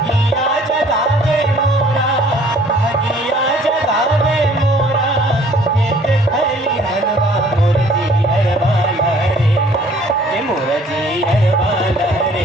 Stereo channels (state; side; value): normal; both; correlation 0.56